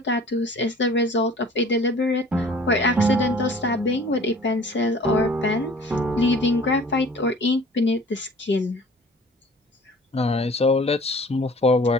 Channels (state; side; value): normal; both; correlation 0.48